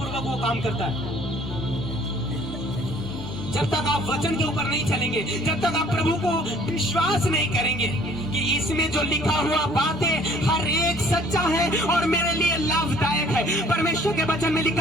वो काम करता है। जब तक आप वचन के ऊपर नहीं चलेंगे, जब तक आप प्रभु को विश्वास नहीं करेंगे कि इसमें जो लिखा हुआ बातें हर एक सच्चा है और मेरे लिए लाभदायक है। परमेश्वर के वचन में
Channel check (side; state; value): both; normal; correlation 0.56